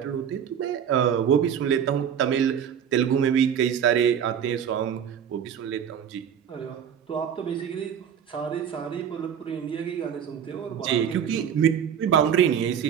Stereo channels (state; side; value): quieter; left; 8.5 dB